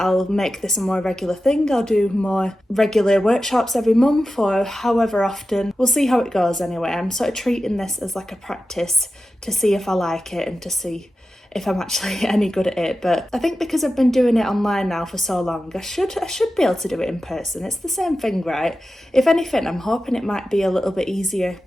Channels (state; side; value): normal; both; correlation 0.93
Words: make this a more regular thing. I'll do more regular workshops every month or however often. We'll see how it goes anyway. I'm sort of treating this as like a practice to see if I like it and to see if I'm actually any good at it. But I think because I've been doing it online now for so long, I should be able to do it in person. It's the same thing, right? If anything, I'm hoping it might be a little bit easier